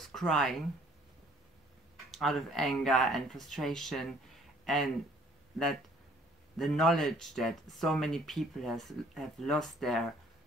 crying out of anger and frustration, and that the knowledge that so many people have lost their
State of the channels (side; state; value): both; normal; correlation 0.58